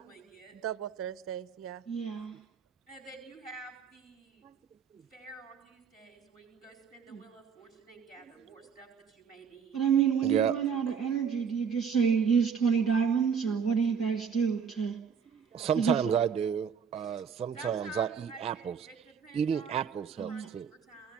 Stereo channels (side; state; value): left; quieter; 6.8 dB